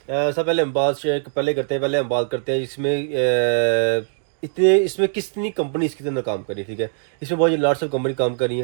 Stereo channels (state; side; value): silent; left; digital silence